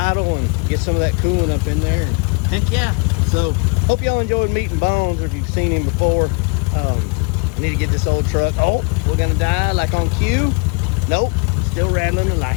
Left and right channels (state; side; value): quieter; right; 33.2 dB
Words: and get some of that coolant up in there. And heck yeah. So hope y'all enjoyed meeting Bones, or if you've seen him before. I need to get this old truck. Oh, we're gonna die like on cue. Nope, still rattling the